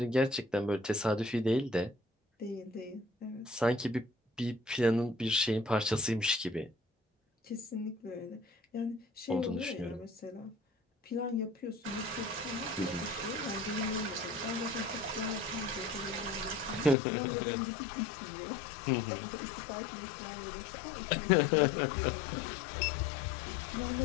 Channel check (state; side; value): drops out; right; at 16.9 s